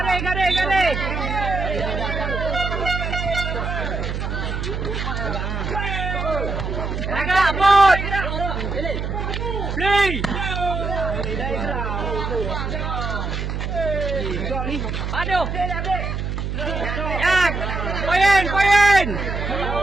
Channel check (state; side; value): noise; right; hum, 3 dB below the sound